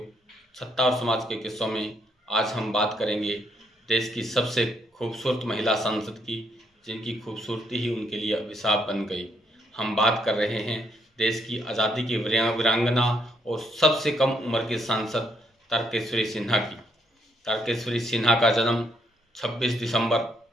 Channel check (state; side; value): normal; both; correlation 0.73